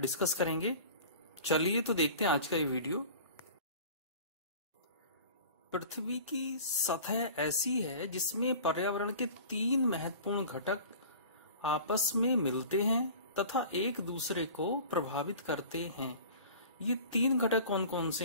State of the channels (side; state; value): both; inverted; correlation -0.41